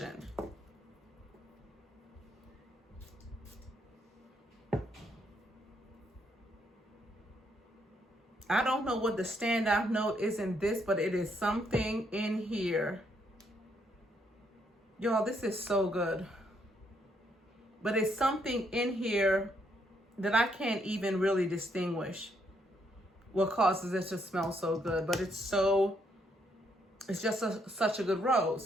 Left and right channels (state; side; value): normal; both; correlation 0.73